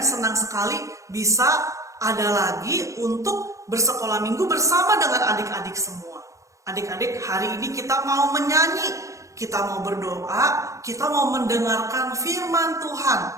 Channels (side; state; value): left; late; 0.15 ms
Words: senang sekali bisa ada lagi untuk bersekolah minggu bersama dengan adik-adik semua. Adik-adik, hari ini kita mau menyanyi, kita mau berdoa, kita mau mendengarkan firman Tuhan.